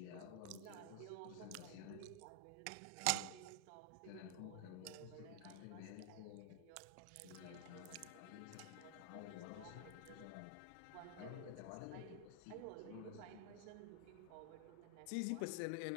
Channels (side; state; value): both; different; correlation 0.00